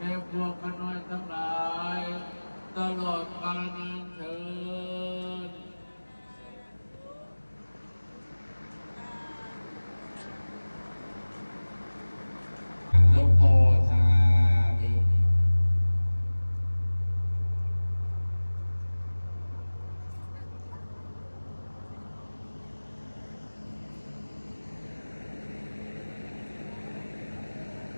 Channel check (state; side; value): inverted; both; correlation -1.00